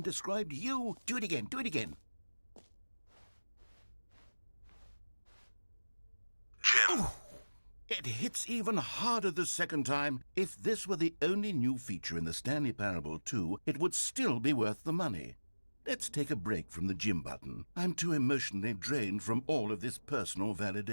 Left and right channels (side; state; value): both; inverted; correlation -1.00